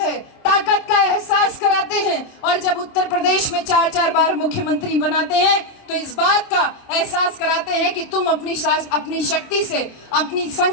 ताकत का एहसास कराते हैं। और जब उत्तर प्रदेश में 4-4 बार मुख्यमंत्री बनाते हैं तो इस बात का एहसास कराते हैं कि तुम अपनी शक्ति से, अपनी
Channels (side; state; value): right; late; 27 ms